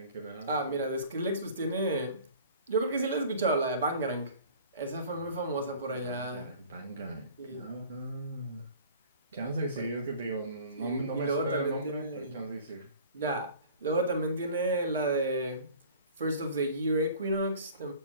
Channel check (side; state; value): both; inverted; correlation -0.46